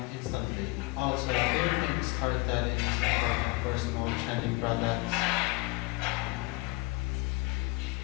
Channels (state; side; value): quieter; right; 24.5 dB